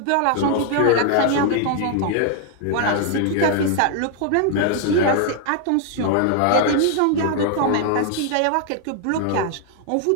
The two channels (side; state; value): both; different; correlation 0.00